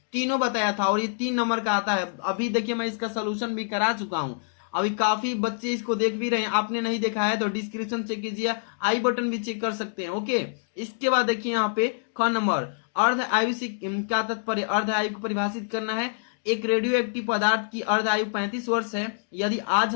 तीनों बताया था। और ये 3 नंबर का आता है। अभी देखिए मैं इसका सोल्यूशन भी करा चुका हूँ। अभी काफी बच्चे इसको देख भी रहे हैं, आपने नहीं देखा है तो डिस्क्रिप्शन चेक कीजिए, आई बटन भी चेक कर सकते हैं, ओके। इसके बाद देखिए यहाँ पे ख नंबर, अर्ध आयु से क्या तात्पर्य, अर्ध आयु को परिभाषित करना है। एक रेडियो एक्टिव पदार्थ की अर्ध आयु 35 वर्ष है। यदि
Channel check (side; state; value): right; silent; digital silence